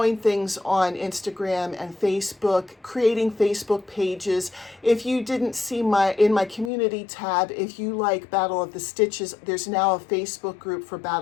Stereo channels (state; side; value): drops out; right; at 6.7 s